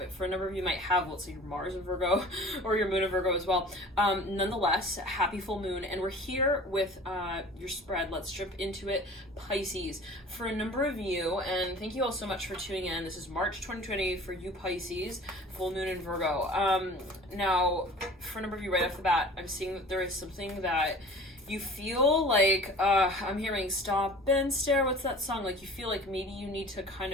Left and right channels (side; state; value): both; normal; correlation 0.43